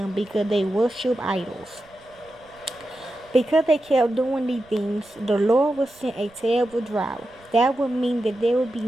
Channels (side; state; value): right; noise; rumble, 29 dB below the sound